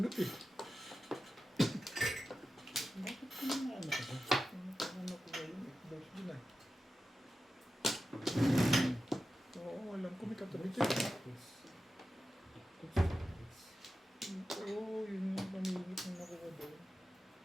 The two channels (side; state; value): both; normal; correlation 0.92